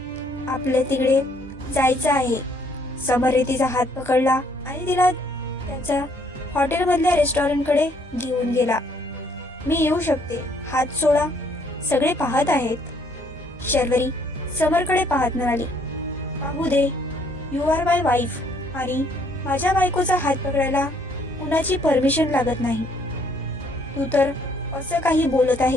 आपल्या तिकडे जायचं आहे. समरने तिचा हात पकडला आणि तिला त्याच्या हॉटेलमधल्या रेस्टॉरंटकडे घेऊन गेला. मी येऊ शकते, हात सोडा, सगळे पाहत आहेत. शर्वरी समरकडे पाहत म्हणाली, पाहू दे, यू आर माय वाईफ आणि माझ्या बायकोचा हात पकडायला कुणाची परमिशन लागत नाही. तू तर असं काही बोलत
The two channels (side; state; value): both; normal; correlation 0.66